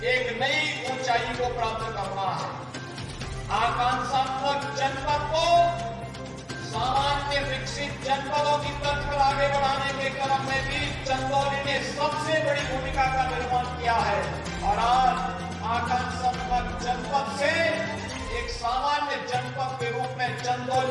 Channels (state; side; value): identical; both; correlation 1.00